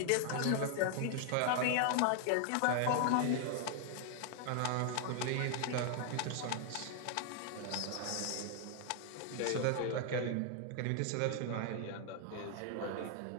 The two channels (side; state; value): both; different; correlation 0.00